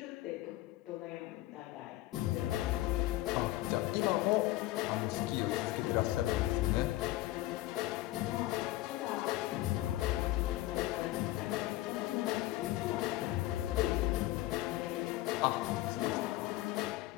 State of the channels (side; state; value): right; quieter; 16.6 dB